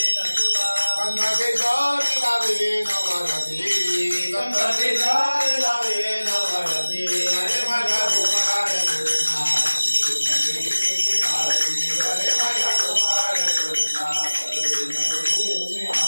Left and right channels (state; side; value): inverted; both; correlation -1.00